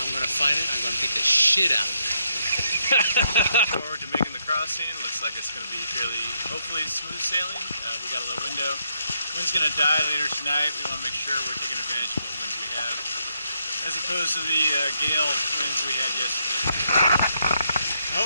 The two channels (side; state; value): both; inverted; correlation -0.77